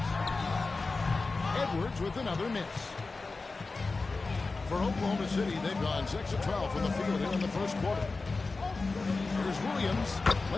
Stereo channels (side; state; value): right; quieter; 3.8 dB